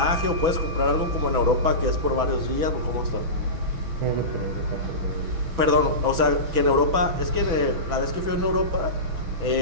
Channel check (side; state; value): left; late; 6.0 ms